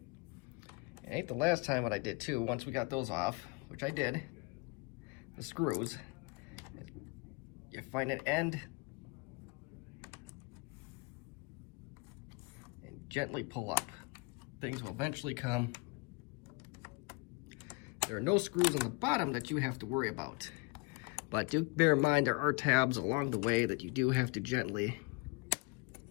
It ain't the last time what I did too. Once we got those off, which I did, the screws, you find an end and gently pull up. Things will eventually come. There are no screws on the bottom that you have to worry about. But do bear in mind there are tabs along the way that you do have to gently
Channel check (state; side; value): quieter; right; 29.1 dB